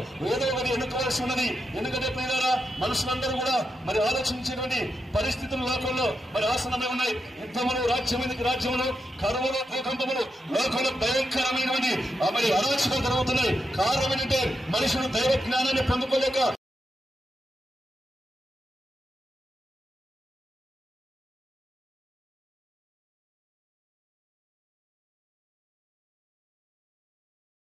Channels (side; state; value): both; normal; correlation 0.85